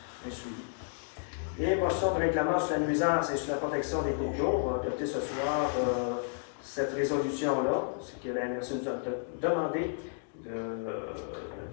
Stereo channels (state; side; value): silent; right; digital silence